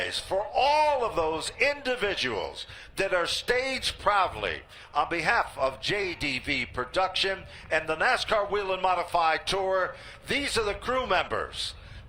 for all of those individuals that are staged proudly on behalf of JDV Production and the NASCAR Whelen Modified Tour. These are the crew members.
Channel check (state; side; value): identical; both; correlation 1.00